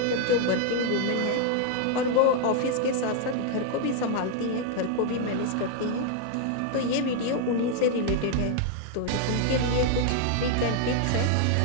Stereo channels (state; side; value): different; both; correlation 0.00